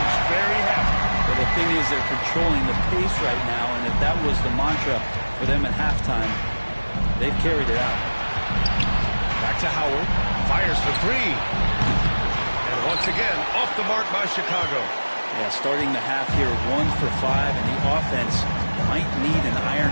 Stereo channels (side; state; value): both; inverted; correlation -1.00